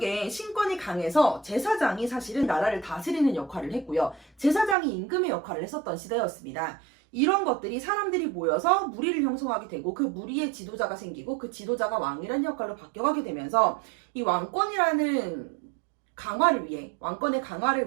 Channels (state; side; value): drops out; left; at 4.8 s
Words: 신권이 강해서 제사장이 사실은 나라를 다스리는 역할을 했고요. 제사장이 임금의 역할을 했었던 시대였습니다. 이런 것들이 사람들이 모여서 무리를 형성하게 되고 그 무리의 지도자가 생기고 그 지도자가 왕이라는 역할로 바뀌어가게 되면서 이 왕권이라는 왕권의